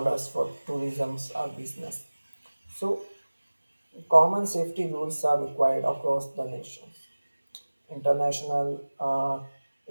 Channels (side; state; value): both; inverted; correlation -1.00